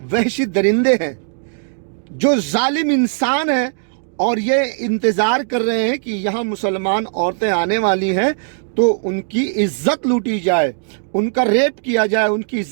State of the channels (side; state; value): left; silent; digital silence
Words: वहशी दरिंदे हैं जो जालिम इंसान हैं, और ये इंतजार कर रहे हैं कि यहाँ मुसलमान औरतें आने वाली हैं तो उनकी इज्जत लूटी जाए, उनका रेप किया जाए, उनकी